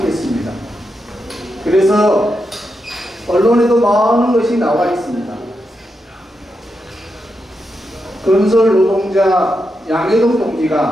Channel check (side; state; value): both; normal; correlation 0.86